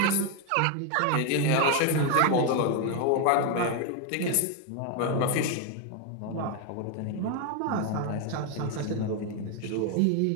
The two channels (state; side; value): different; both; correlation 0.01